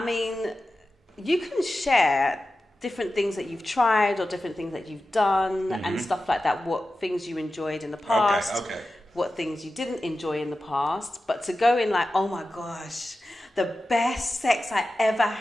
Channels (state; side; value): normal; both; correlation 0.93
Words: mean, you can share different things that you've tried or different things that you've done and stuff like that, what things you enjoyed in the past, what things you didn't enjoy in the past. But to go in like, oh my gosh, the best sex I ever